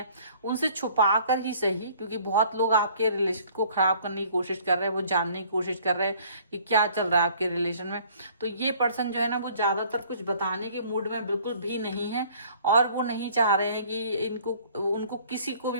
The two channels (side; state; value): both; inverted; correlation -0.55